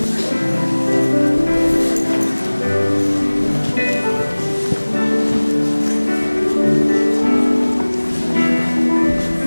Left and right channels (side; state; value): both; inverted; correlation -1.00